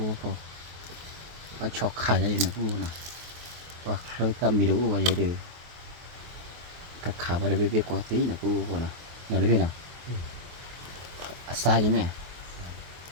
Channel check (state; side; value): late; left; 23 ms